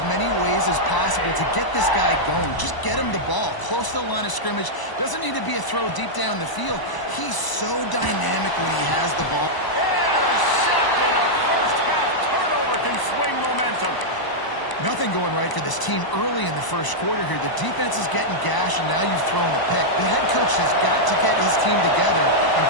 many ways as possible to get this guy going. Just get him the ball close to the line of scrimmage. Doesn't need to be a throw deep down the field. He's so dynamic when he has the ball. Intercepted. A first-half turnover can swing momentum. Nothing going right for this team early in the first quarter here. The defense is getting gashed, and now you've thrown a pick. The head coach has got to get his team together and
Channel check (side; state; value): right; late; 1.0 ms